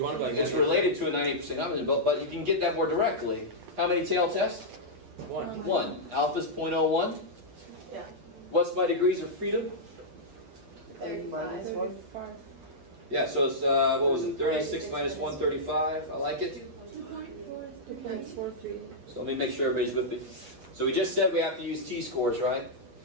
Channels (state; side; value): late; left; 8.7 ms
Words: want to like. It's related to a 98% confidence, but you can get that more directly. How many tail tests? 1. 1. Alpha's 0.01. Yeah. What's my degrees of freedom? N minus 1? Yeah, so it's, what was it, 36 minus 135. I like it. So let me make sure everybody's with me. So we just said we have to use T-scores, right?